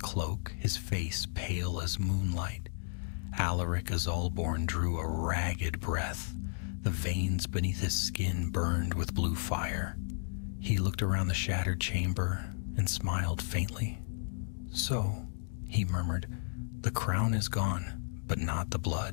his face pale as moonlight. Alaric Azulborn drew a ragged breath. The veins beneath his skin burned with blue fire. He looked around the shattered chamber and smiled faintly. "So," he murmured, "the crown is gone, but not the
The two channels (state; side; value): silent; right; digital silence